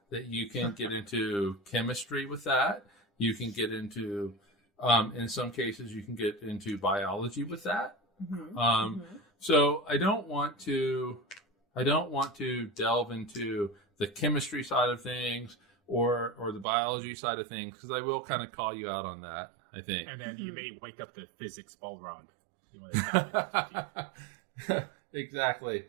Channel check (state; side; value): drops out; left; at 16.7 s